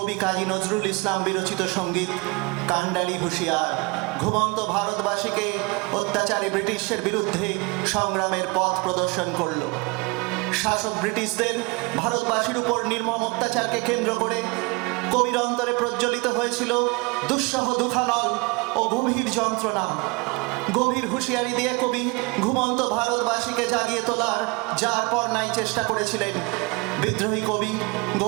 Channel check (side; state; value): left; quieter; 28.6 dB